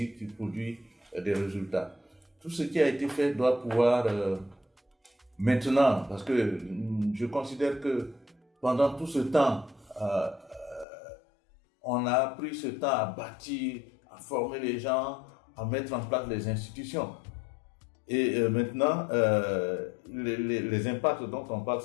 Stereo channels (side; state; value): right; drops out; at 10.9 s